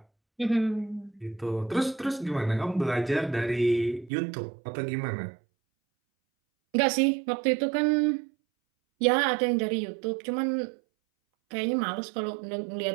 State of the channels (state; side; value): drops out; left; at 4.1 s